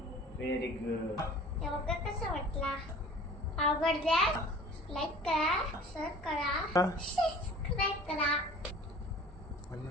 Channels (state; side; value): normal; both; correlation 0.45